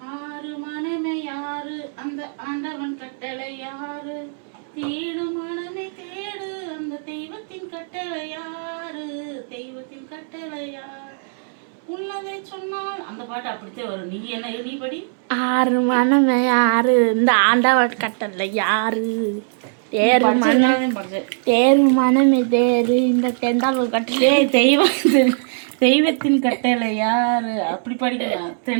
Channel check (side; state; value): left; silent; 65 dB below the other